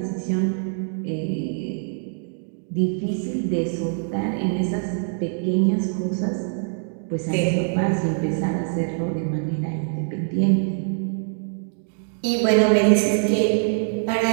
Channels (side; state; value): left; silent; 63 dB below the other